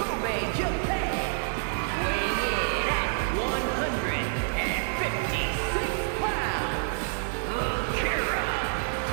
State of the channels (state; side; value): silent; left; digital silence